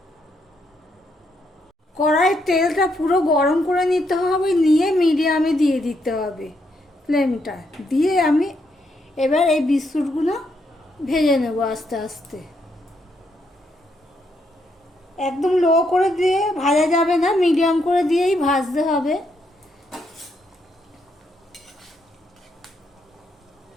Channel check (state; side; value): normal; both; correlation 0.77